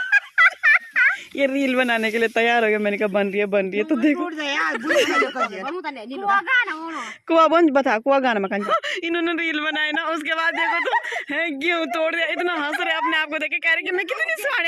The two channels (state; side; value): identical; both; correlation 1.00